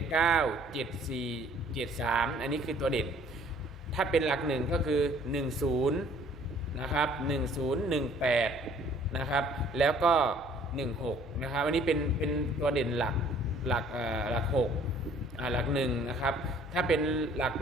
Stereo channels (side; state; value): both; normal; correlation 0.57